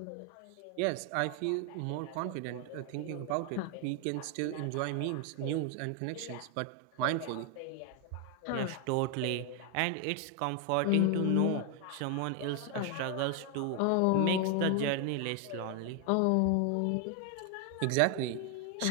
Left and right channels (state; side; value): different; both; correlation 0.01